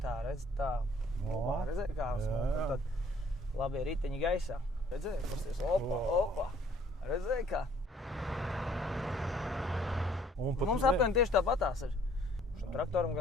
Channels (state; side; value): normal; both; correlation 0.60